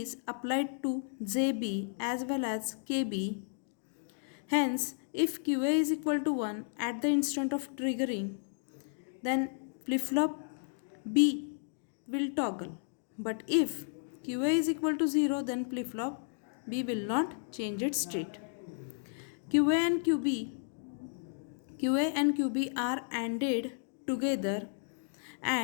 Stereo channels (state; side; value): silent; right; digital silence